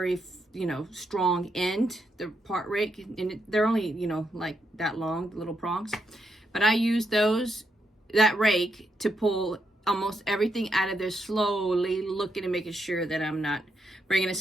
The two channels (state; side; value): normal; both; correlation 0.80